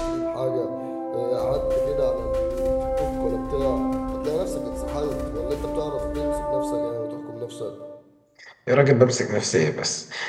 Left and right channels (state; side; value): identical; both; correlation 1.00